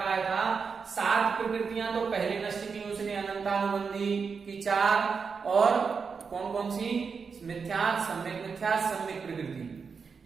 था? 7 प्रकृतियां तो पहले नष्ट की उसने, अनंतानुबंधी की 4, और कौन कौन सी? मिथ्यात्, सम्यक मिथ्यात्, सम्यक प्रकृति।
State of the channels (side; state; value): left; quieter; 5.5 dB